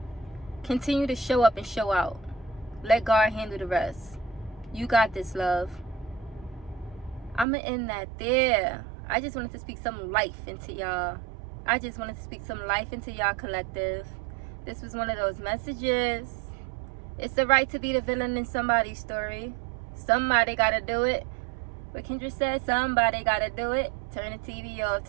Continue to show up and show out. Let God handle the rest. You got this, love. I'm going to end that there. I just wanted to speak some life into y'all. I just wanted to speak some life into y'all collective. This was one of those messages. It's the right to be the villain in somebody's story. Somebody got to do it. What Kendra said, somebody got to do it. Turn the TV off.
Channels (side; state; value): left; drops out; at 7.5 s